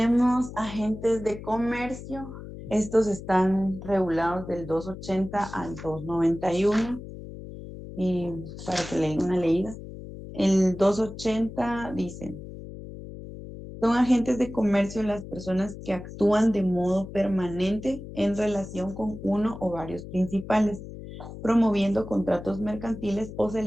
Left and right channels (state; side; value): noise; left; hum, 12 dB below the sound